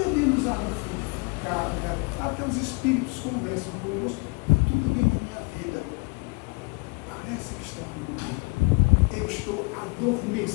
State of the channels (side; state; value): right; quieter; 31.2 dB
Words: água frutificada, até os espíritos conversam conosco, tudo bem na minha vida. Parece que está tudo bem. Eu estou